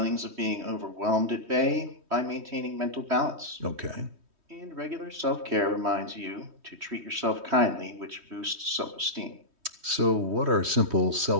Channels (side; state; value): left; late; 3.1 ms